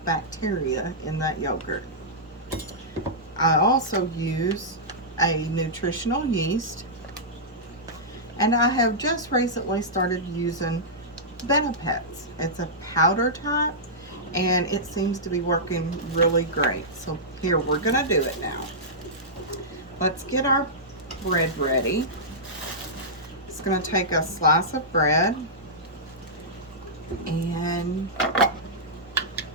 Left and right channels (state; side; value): normal; both; correlation -0.13